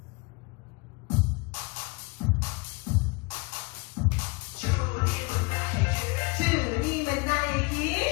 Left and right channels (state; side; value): quieter; right; 28.2 dB